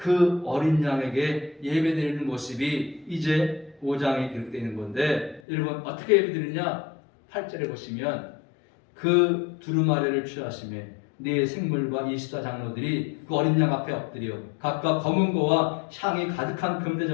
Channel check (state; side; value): drops out; right; at 5.4 s